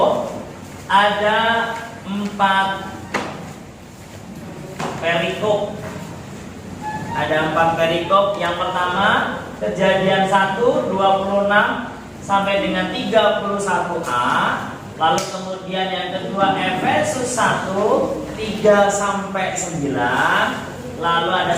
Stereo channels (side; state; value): both; identical; correlation 1.00